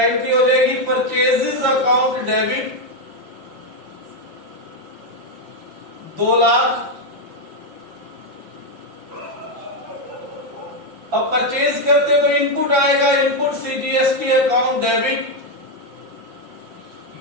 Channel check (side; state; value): left; late; 5.6 ms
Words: एंट्री हो जाएगी? Purchases account debit 2 lakh. अब परचेज करते तो इनपुट आएगा, input CGST account debit